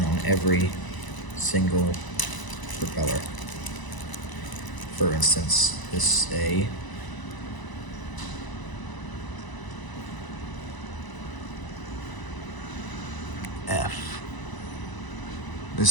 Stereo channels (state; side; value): late; right; 1.0 ms